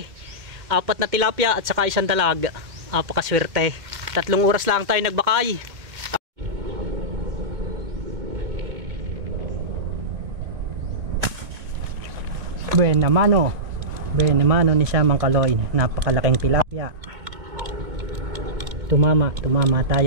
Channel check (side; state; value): left; late; 2.1 ms